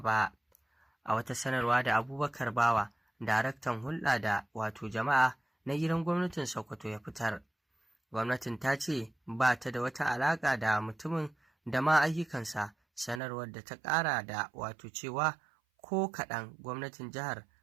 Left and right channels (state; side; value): drops out; left; at 13.2 s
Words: A wata sanarwa da Abubakar Bawa, daraktan hulɗa da wato jama'a na gidan gwamnatin Sokoto ya fitar, gwamnatin ta ce ba ta da wata alaƙa da mutumin da ma ayyukansa. Sanarwar da ta ƙara da wato cewa ko kaɗan gwamnatin jihar